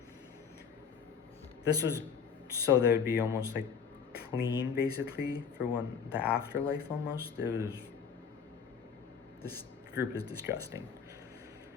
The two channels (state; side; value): quieter; right; 6.6 dB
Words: This was so they would be almost like clean, basically, for when the afterlife almost. This group is disgusting.